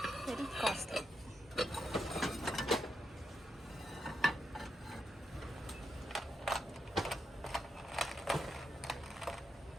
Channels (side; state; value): both; normal; correlation 0.84